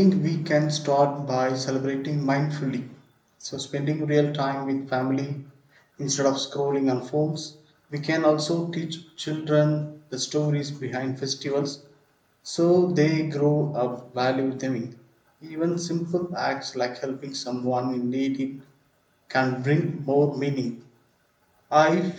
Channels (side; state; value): both; identical; correlation 1.00